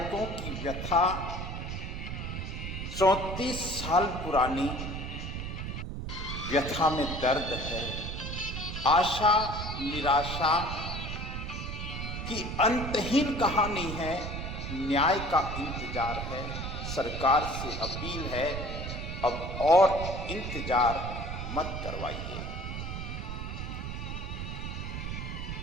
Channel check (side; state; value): right; noise; rumble, 5 dB below the sound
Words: की व्यथा 34 साल पुरानी व्यथा में दर्द है, आशा निराशा की अंतहीन कहानी है। न्याय का इंतजार है, सरकार से अपील है, अब और इंतजार मत करवाइए।